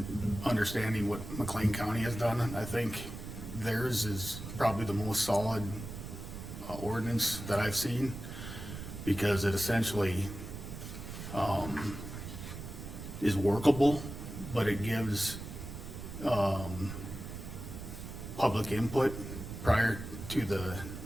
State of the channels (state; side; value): noise; right; rumble, 9 dB below the sound